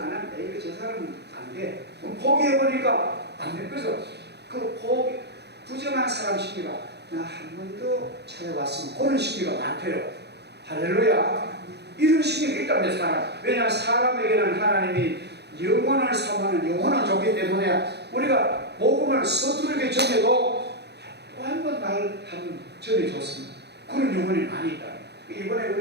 하면 이거 저 사람은 안 돼. 포기해보니까 안 돼. 그래서 그 부정한 사람 심리가 나 한 번 더 찾아왔으면 그런 심리가 많대요. 할렐루야. 이런 심리가 있다면 사람. 왜냐하면 사람에게는 하나님이 영혼을 사모하는 영혼을 줬기 때문에 우리가 복음을 서투르게 전해도 또 한 번 날 한번 전해줬습니다. 그런 영혼이 많이 있다. 이번에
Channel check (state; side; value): late; left; 0.49 ms